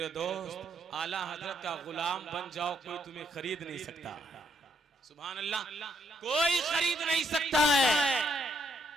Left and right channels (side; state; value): both; normal; correlation 0.73